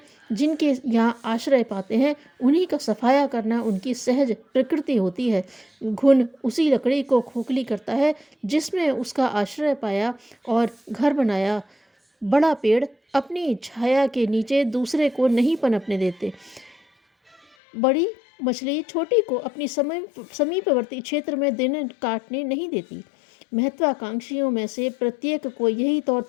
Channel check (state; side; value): drops out; right; at 17.4 s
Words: जिनके यहाँ आश्रय पाते हैं, उन्हीं का सफाया करना उनकी सहज प्रकृति होती है। घुन उसी लकड़ी को खोखली करता है जिसमें उसका आश्रय पाया और घर बनाया। बड़ा पेड़ अपनी छाया के नीचे दूसरे को नहीं पनपने देते। बड़ी मछली छोटी को अपनी समीपवर्ती क्षेत्र में दिन काटने नहीं देती। महत्वाकांक्षियों में से प्रत्येक को यही तौर